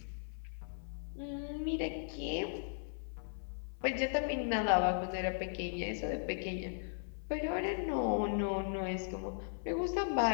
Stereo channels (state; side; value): silent; right; 53 dB below the other